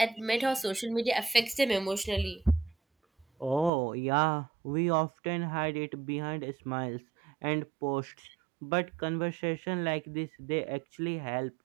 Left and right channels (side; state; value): left; drops out; at 3.7 s